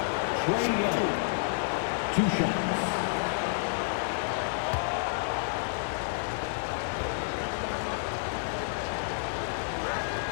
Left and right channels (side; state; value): right; silent; 58 dB below the other